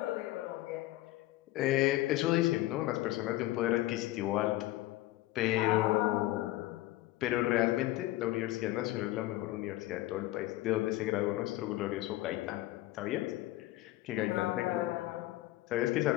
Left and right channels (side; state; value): right; quieter; 16.9 dB